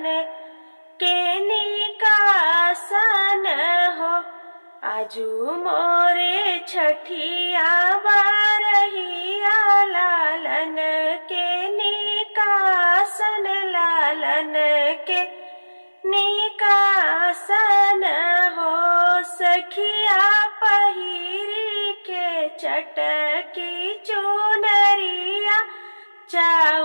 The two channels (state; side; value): inverted; both; correlation -1.00